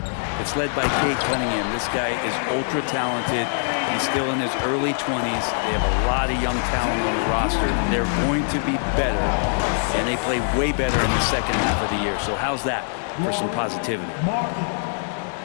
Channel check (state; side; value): silent; right; digital silence